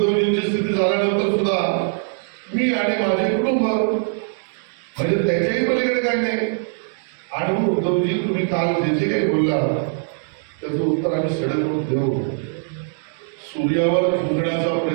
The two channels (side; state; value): left; silent; digital silence